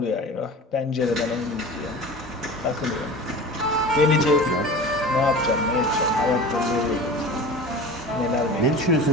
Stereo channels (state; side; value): normal; both; correlation 0.35